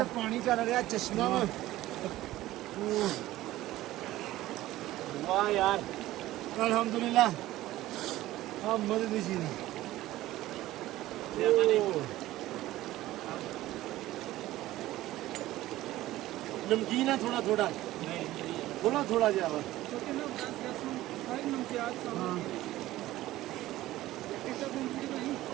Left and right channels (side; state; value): left; quieter; 15.9 dB